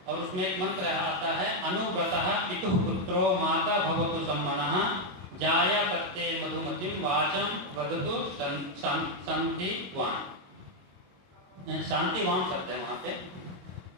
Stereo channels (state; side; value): late; left; 22 ms